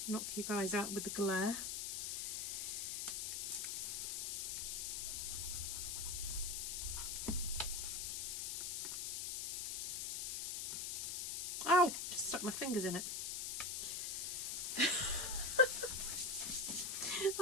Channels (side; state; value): left; noise; hiss, 1 dB below the sound